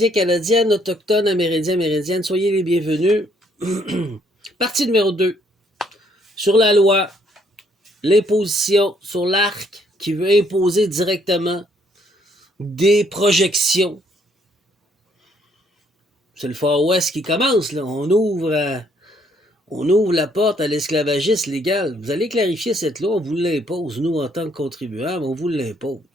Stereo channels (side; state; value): both; normal; correlation 0.68